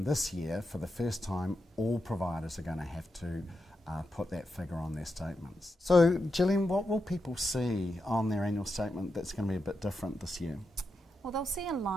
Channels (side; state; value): both; normal; correlation 0.86